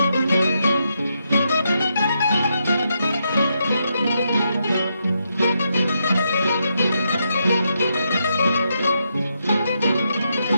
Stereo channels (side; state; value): both; inverted; correlation -0.81